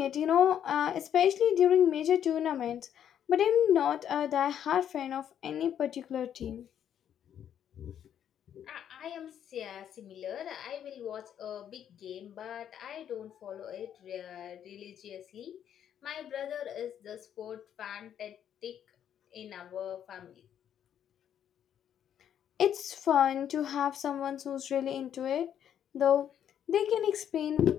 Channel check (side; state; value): right; quieter; 9.6 dB